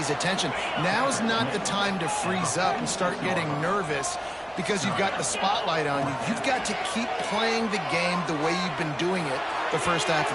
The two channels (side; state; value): both; identical; correlation 1.00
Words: attention. Now's not the time to freeze up and start getting nervous because you've got the spotlight on you. You've got to keep playing the game the way you've been doing it the first half of